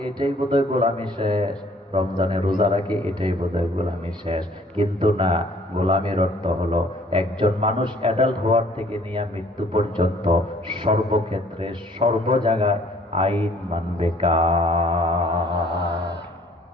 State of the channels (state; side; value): normal; both; correlation 0.58